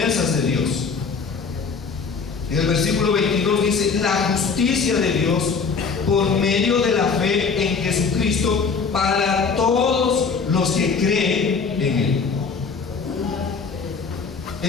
de Dios. En el versículo 22 dice: la justicia de Dios por medio de la fe en Jesucristo para todos los que creen en Él.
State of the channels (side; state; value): right; quieter; 5.2 dB